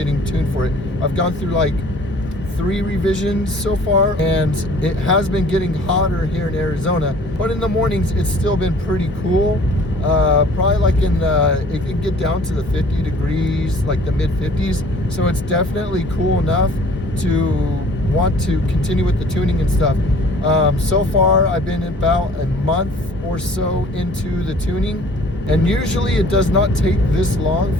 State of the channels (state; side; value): normal; both; correlation 0.51